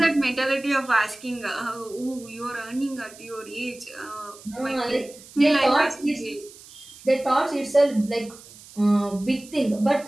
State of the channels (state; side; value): noise; right; hiss, 20 dB below the sound